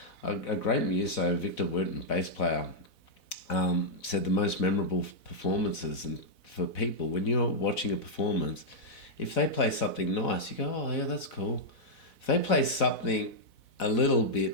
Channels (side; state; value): right; late; 4.0 ms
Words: A great muso, Victor Wooten, bass player, said the most memorable performances, and for people, when you're watching a performance, if they play something nice, you go, oh yeah, that's cool. If they play something a little